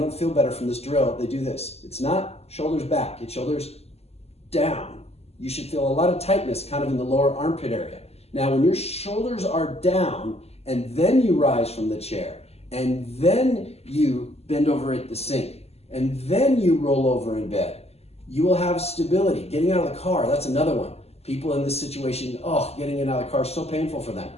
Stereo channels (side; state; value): right; late; 0.30 ms